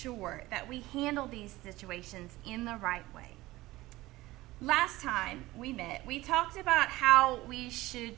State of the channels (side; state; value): left; quieter; 18.4 dB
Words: that we handle these situations in the right way? Last time we met, we talked about how we